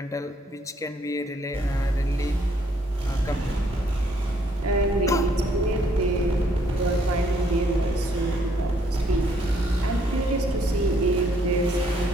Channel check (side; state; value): both; normal; correlation 0.68